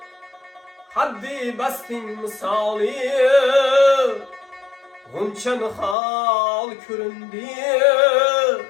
Haddi bastin misali, gonçan hal köründü.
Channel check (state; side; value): drops out; right; at 6.0 s